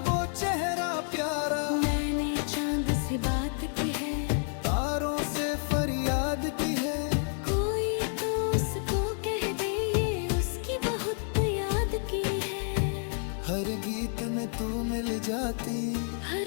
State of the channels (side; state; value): right; silent; 56 dB below the other